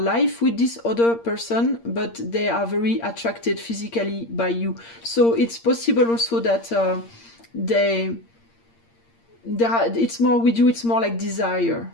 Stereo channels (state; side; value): late; right; 8.7 ms